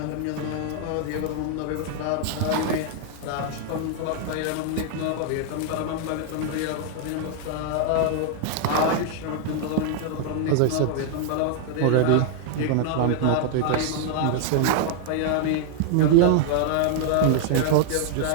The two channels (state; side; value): different; both; correlation 0.00